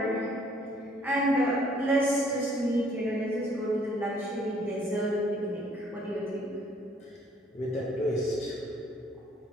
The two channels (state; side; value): normal; both; correlation 0.61